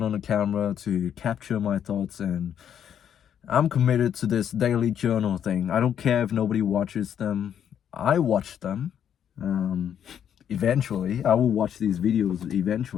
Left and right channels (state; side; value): quieter; right; 9.1 dB